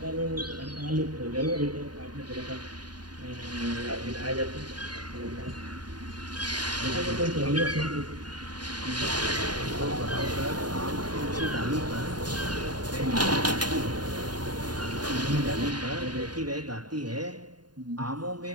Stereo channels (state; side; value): late; left; 0.70 ms